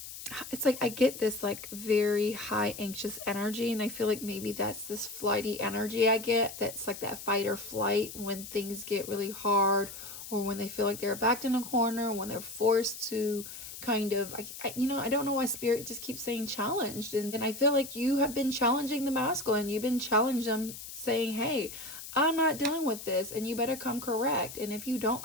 like I get this like very high anxious energy, and I feel like maybe that's this flighty energy I get. That's like that fight or flight when things get really hard, or when they feel like they're backed in a corner, when they're forced to kind of, I don't know why Spirit just keeps saying challenged. And I feel like you have been challenging the masculine. You've been challenging them, saying, hey, I'm not dealing with this, and you better come correct. And if you don't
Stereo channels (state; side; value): noise; left; hiss, 11 dB below the sound